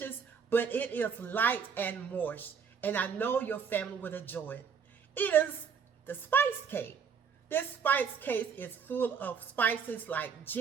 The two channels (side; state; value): left; quieter; 6.5 dB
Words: but it is light and moist, and I know your family would enjoy it. It is the spice cake. This spice cake is full of spices like